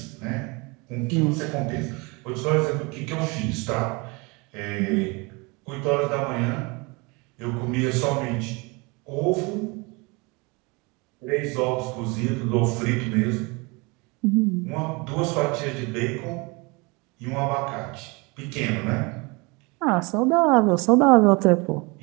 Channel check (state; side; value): quieter; left; 27.6 dB